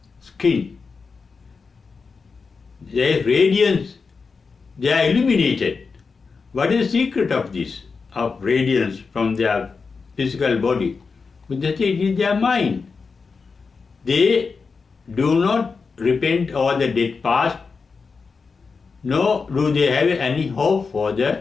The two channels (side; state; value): right; quieter; 4.9 dB